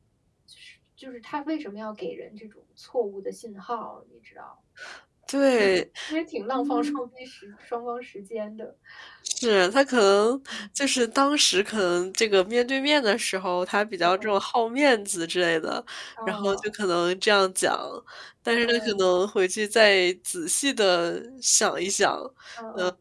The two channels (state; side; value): identical; both; correlation 1.00